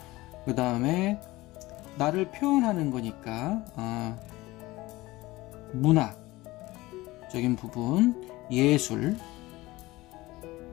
그 다음에 나를 표현하는 거니까 문화적인 부분, 예술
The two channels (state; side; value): quieter; right; 19.5 dB